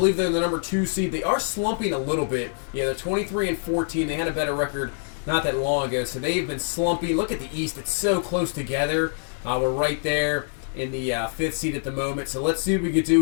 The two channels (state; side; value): silent; right; digital silence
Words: they're the number 2 seed. They are slumping a little bit. Yeah, they're 23-14. They had a better record not that long ago, so they've been slumping. Look at the East. It's so close together. We're right there in the 5th seed at the moment. So let's see what we can